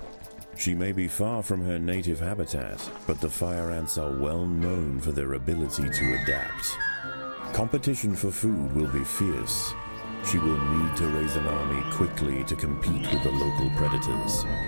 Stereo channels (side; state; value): both; inverted; correlation -1.00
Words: She may be far from her native habitat, but the fire ants are well known for their ability to adapt. Competition for food will be fierce. She will need to raise an army quickly to compete with the local predators.